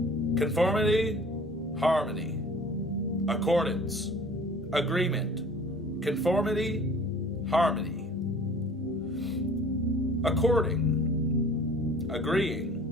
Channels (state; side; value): normal; both; correlation 0.47